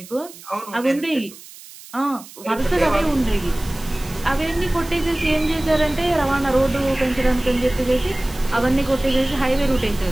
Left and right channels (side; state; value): right; noise; hiss, 18 dB below the sound